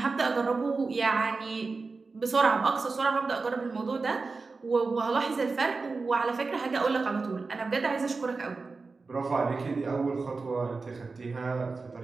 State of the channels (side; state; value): left; quieter; 4.1 dB